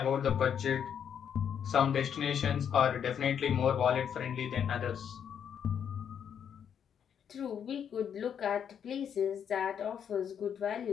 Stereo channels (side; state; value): right; quieter; 8.2 dB